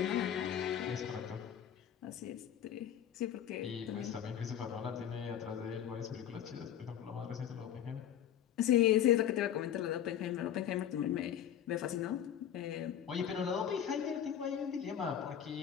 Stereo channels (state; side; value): quieter; right; 9.9 dB